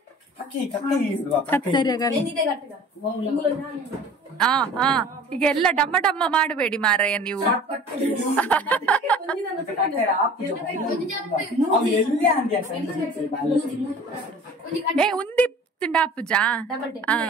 ಈಗ ಎಲ್ಲ ಡಮ್ಮ ಮಾಡಬೇಡಿ ಮಾರಾಯ ನೀವು. ಉಂದಿ ತುಂಡ ಪೂಜ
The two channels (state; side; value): normal; both; correlation 0.44